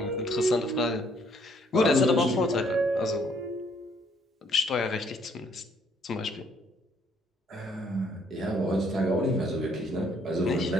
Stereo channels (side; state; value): both; normal; correlation 0.66